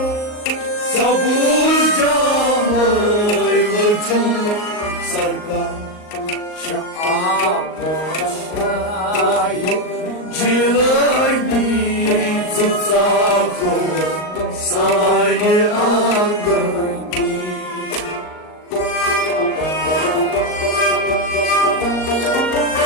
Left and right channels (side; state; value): right; late; 38 ms